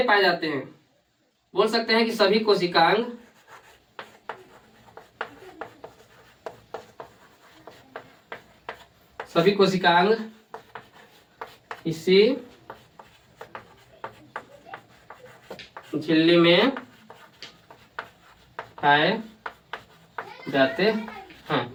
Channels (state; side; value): identical; both; correlation 1.00